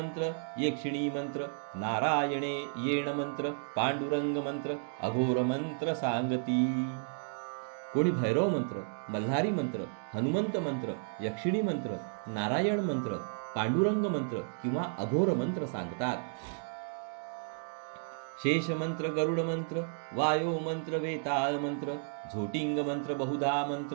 यक्षिणी मंत्र, नारायणे येण मंत्र, पांडुरंग मंत्र, अघोर मंत्र सांगती. कोणी भैरव मंत्र, मल्हारी मंत्र, हनुमंत मंत्र, यक्षिणी मंत्र, नारायण मंत्र, पांडुरंग मंत्र किंवा अघोर मंत्र सांगतात. शेष मंत्र, गरुड मंत्र, वायो मंत्र, वेताळ मंत्र, झोटिंग मंत्र, बहुधा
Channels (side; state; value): left; silent; digital silence